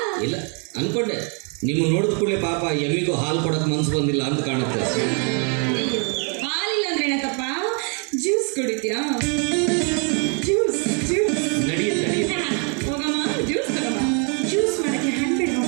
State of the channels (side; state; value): left; quieter; 38.9 dB